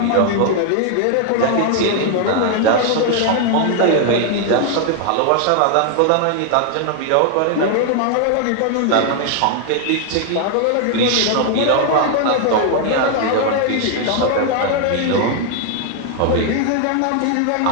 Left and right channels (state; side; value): different; both; correlation 0.00